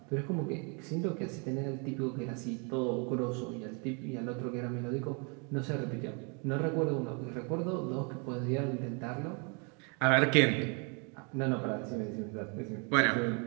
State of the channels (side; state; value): left; quieter; 35.0 dB